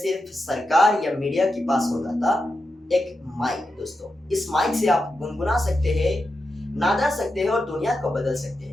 सरकार या मीडिया के पास होता था, एक माइक। दोस्तों इस माइक से आप गुनगुना सकते हैं, नादा सकते हैं और दुनिया को बदल सकते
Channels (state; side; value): normal; both; correlation 0.89